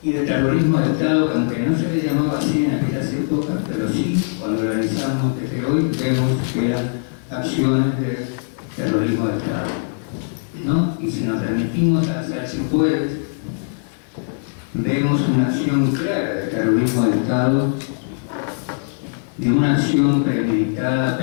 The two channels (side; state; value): right; silent; 65 dB below the other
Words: y de terrorismo de Estado, que aunque no se le llamaba así en aquellas épocas, pero sí, cuando lo analizamos desde hoy, vemos que eran acciones de terrorismo de Estado, ¿no? Y si nos remitimos a las cipuedes, vemos una acción clara de terrorismo de Estado, de una acción premeditada,